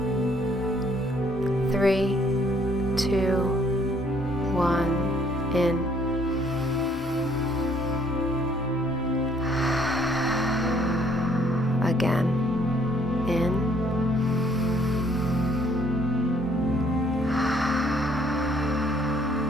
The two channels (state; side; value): normal; both; correlation 0.64